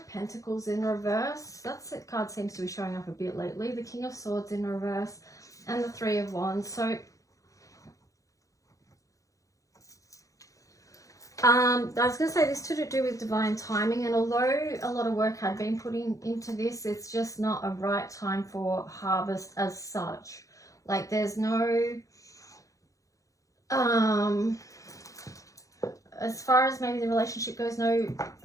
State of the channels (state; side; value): late; right; 0.16 ms